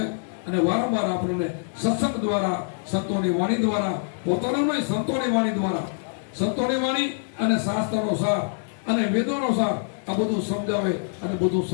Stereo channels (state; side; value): silent; right; digital silence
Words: અને વારંવાર આપણને સત્સંગ દ્વારા, સંતોની વાણી દ્વારા, પોતાનું નહીં સંતોની વાણી દ્વારા, સંતોની વાણી અને શાસ્ત્રનો સાર અને વેદોનો સાર, આ બધું સમજાવે અને બધું